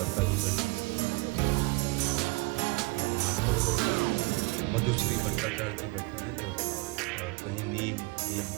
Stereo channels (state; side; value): quieter; left; 24.9 dB